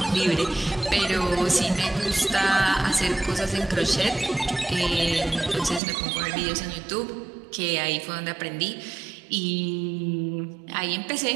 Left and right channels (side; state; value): left; drops out; at 5.8 s